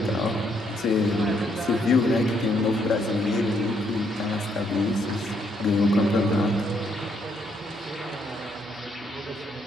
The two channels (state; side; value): normal; both; correlation 0.73